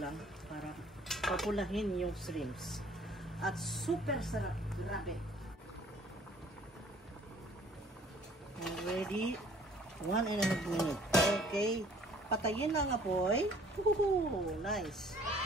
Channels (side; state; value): both; normal; correlation 0.55